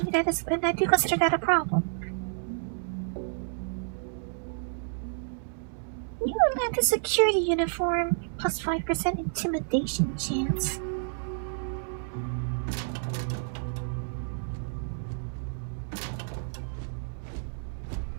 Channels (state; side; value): silent; left; digital silence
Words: and I do consider that a problem. You lack a security uniform, plus 5% intimidation chance.